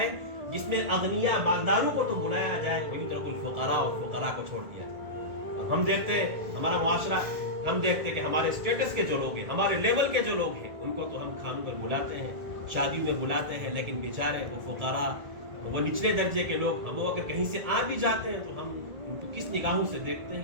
جس میں اغنیاء مالداروں کو تو بلایا جائے، ویترک الفقراء، اور فقراء کو چھوڑ دیا جائے۔ ہم دیکھتے ہیں ہمارا معاشرہ، ہم دیکھتے ہیں کہ ہمارے اسٹیٹس کے جو لوگ ہیں، ہمارے لیول کے جو لوگ ہیں، ان کو تو ہم کھانوں پر بلاتے ہیں، شادی میں بلاتے ہیں، لیکن بیچارے وہ فقراء، وہ نچلے درجے کے لوگ، ہم اگر کہیں سے آ بھی جاتے ہیں تو ہم ان کو کس نگاہوں سے دیکھتے ہیں،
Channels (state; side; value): late; left; 1.9 ms